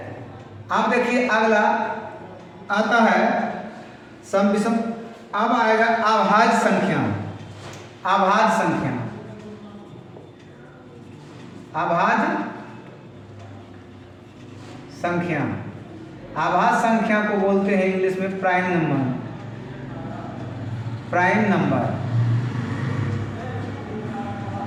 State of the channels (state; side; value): identical; both; correlation 1.00